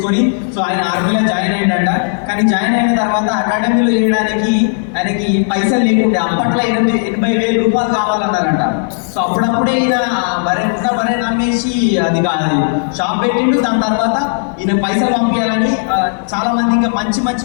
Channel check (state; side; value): silent; right; digital silence